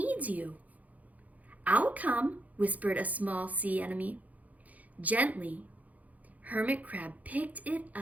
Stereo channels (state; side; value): late; left; 0.076 ms